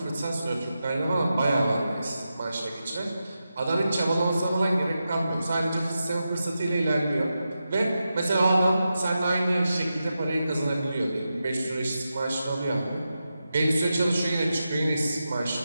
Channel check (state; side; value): inverted; both; correlation -0.90